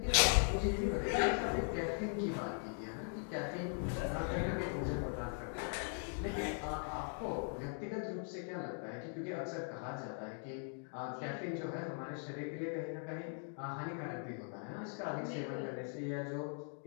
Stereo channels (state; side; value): silent; right; 51 dB below the other